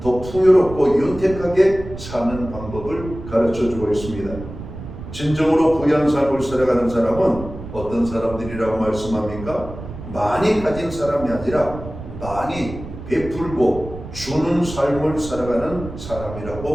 더 풍요롭고 윤택하게 사는 방법을 가르쳐주고 있습니다. 진정으로 부유한 삶을 살아가는 사람은 어떤 사람들이라고 말씀합니까? 많이 가진 사람이 아니라 많이 베풀고 주는 삶을 살아가는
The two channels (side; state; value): right; noise; rumble, 12 dB below the sound